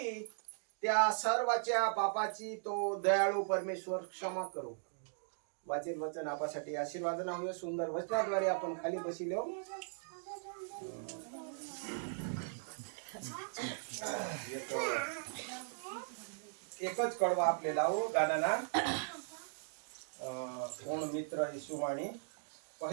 त्या सर्वाच्या पापाची तो दयाळू परमेश्वर क्षमा करू. वाचील वचन आपल्यासाठी आशीर्वादना होय. सुंदर वचनाद्वारे आपण खाली बसिलो. एकच कडवा आपल्याला हो गाण्याला कोण मित्र येशूवाणी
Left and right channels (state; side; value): silent; left; digital silence